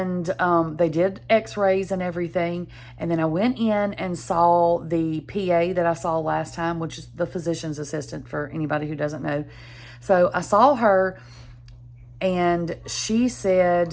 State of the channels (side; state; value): both; identical; correlation 1.00